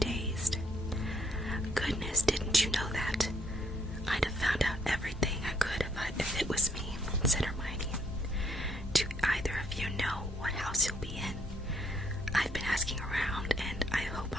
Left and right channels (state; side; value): normal; both; correlation 0.70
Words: Goodness, didn't you know that? I'd have found out everything I could if it was me, said Hermione. Do either of you know what house you'll be in? I've been asking around, and I hope